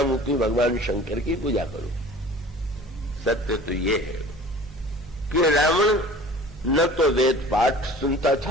हूं कि भगवान शंकर की पूजा करूं। सत्य तो ये है कि रावण न तो वेद पाठ सुनता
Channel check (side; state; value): both; normal; correlation 0.44